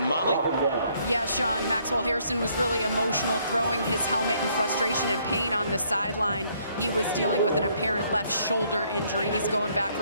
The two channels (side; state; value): both; inverted; correlation -0.67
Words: Molly? Yeah, Sean, Maxwell Hairston was really emotional, throwing his helmet in frustration and pain on the sideline. He was dealing with an apparent left shoulder injury. He's going back